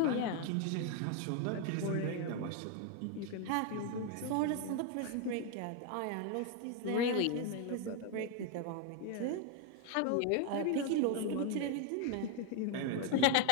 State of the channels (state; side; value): different; both; correlation 0.01